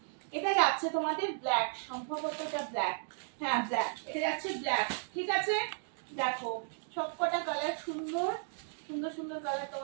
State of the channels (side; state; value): left; silent; digital silence